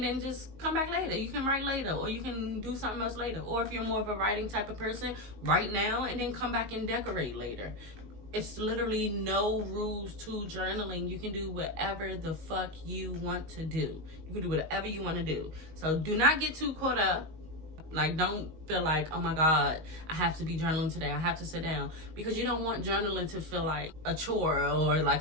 then just come back later. You can write later, or you can do something else later. Or if you're more of a writing type of person, write now and then come back and decorate later. It's literally no rules to journaling. You can do whatever the fuck you want to do. You can do whatever you want to do. So do not get too caught up. Like, don't feel like, oh my God, I have to be journaling today. I have to sit down. Because you don't want journaling to feel like a chore or like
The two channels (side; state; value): left; late; 19 ms